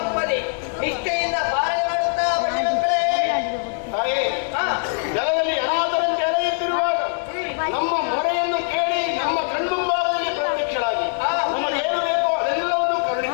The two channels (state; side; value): silent; right; 64 dB below the other